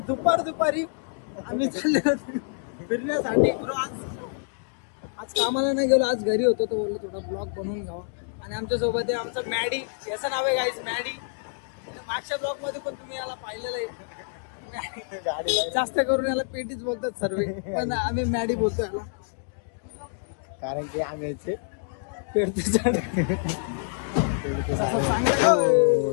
दुपारी आम्ही चाललेलो फिरण्यासाठी. आज कामाला नाही गेलो, आज घरी होतो. तर बोललो थोडा ब्लॉग बनवून घ्यावा. आणि आमच्या सोबत आहे आमचा मॅडी. याचं नाव आहे गाईज मॅडी. मागच्या ब्लॉग मध्ये पण तुम्ही याला पाहिलेलं आहे. जास्त करून याला पेटीच बोलतात सर्व, पण आम्ही मॅडी बोलतो याला, कारण की आम्ही पेडते झाड.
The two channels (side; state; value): right; silent; digital silence